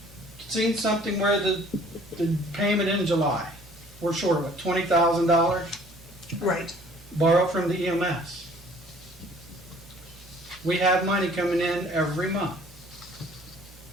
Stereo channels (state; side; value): normal; both; correlation 0.55